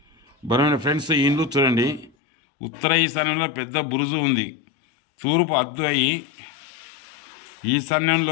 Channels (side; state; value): right; drops out; at 2.1 s